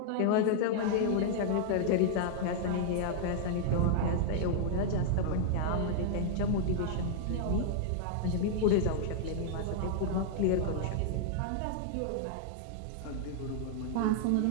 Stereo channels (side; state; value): both; different; correlation -0.01